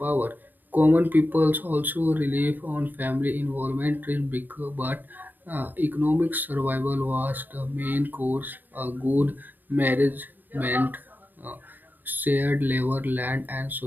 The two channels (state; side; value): late; left; 0.089 ms